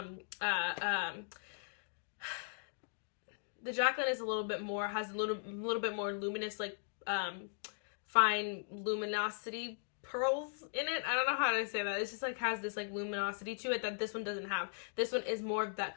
Jaclyn is a little bit more, has a little bit more luminous, like fine luminosity pearls in it. I don't know how to say that. It's just like has this like luminosity to it that this one doesn't have. This one is more of that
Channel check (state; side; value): silent; right; digital silence